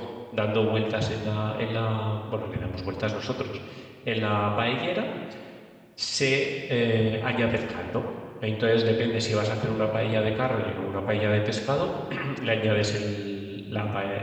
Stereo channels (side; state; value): both; identical; correlation 1.00